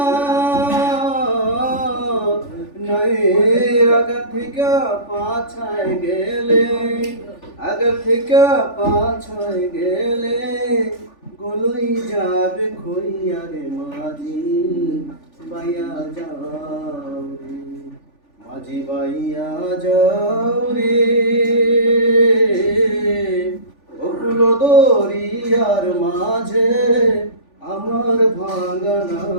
নয়ের আগা থেকে পাছায় গেলে আগা থেকে পাছায় গেলে গলই যাবে খইয়া রে মাঝি বাইয়া যাও রে মাঝি বাইয়া যাও রে অকুল দরিয়ার মাঝে আমার ভাঙা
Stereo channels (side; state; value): right; late; 3.4 ms